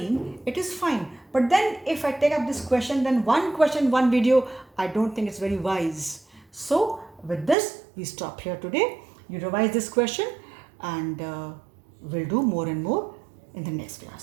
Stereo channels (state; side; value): drops out; left; at 7.6 s